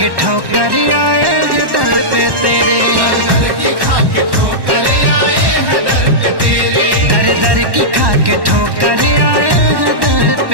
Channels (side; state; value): left; late; 1.1 ms